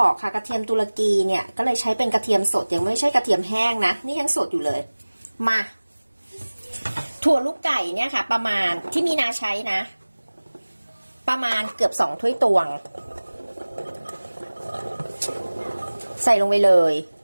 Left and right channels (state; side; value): inverted; both; correlation -1.00